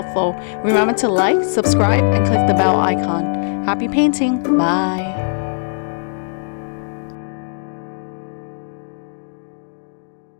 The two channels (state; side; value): silent; right; digital silence